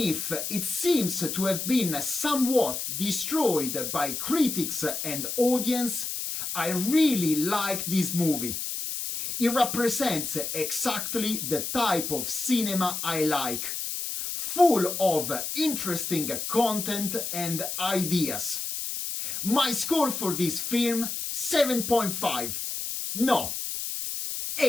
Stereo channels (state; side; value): noise; left; hiss, 4 dB below the sound